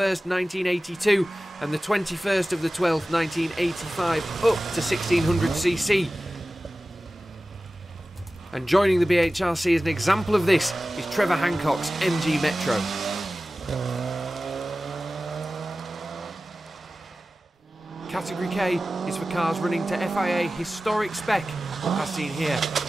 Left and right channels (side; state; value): both; normal; correlation 0.96